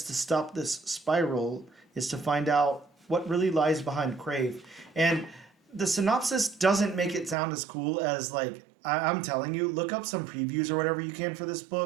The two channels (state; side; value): drops out; left; at 7.4 s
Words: to stop this spiral is to find out what really lies behind Crave. And the synopsis doesn't make it sound as cool as, like, I'm telling you, look up some previews or whatever you can for this